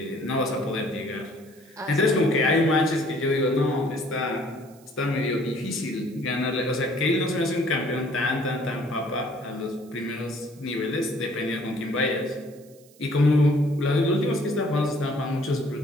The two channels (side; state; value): right; noise; hiss, 27 dB below the sound